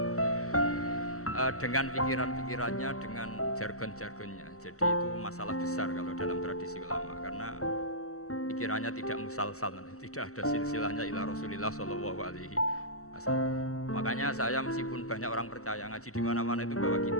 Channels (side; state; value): right; late; 0.64 ms